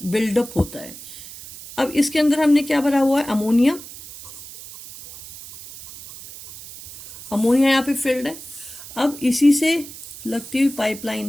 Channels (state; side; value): noise; right; hiss, 15 dB below the sound